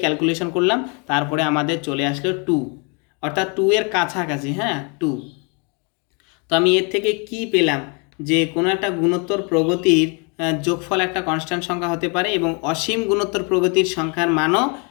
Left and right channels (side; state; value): right; quieter; 34.4 dB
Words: ক্যালকুলেশন করলাম, তারপরে আমাদের চলে আসলো 2, অর্থাৎ 2 এর কাছাকাছি, হ্যাঁ 2। তো আমি এর থেকে কি পেলাম, যে কোনো একটা গুণোত্তর প্রগতির যোগফল একটা কনস্ট্যান্ট সংখ্যা হতে পারে, এবং অসীম গুণোত্তর প্রগতির সংখ্যার মানও